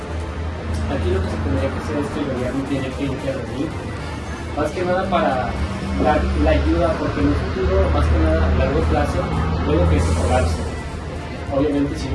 Aquí lo que se tendría que hacer es que el gobierno tiene que intervenir, más que nada para dar la ayuda, porque en un futuro, más que nada a largo plazo, puede que se colapse. Obviamente si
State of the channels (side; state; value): both; identical; correlation 1.00